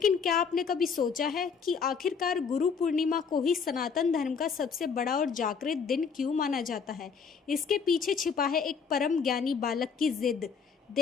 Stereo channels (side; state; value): right; quieter; 6.0 dB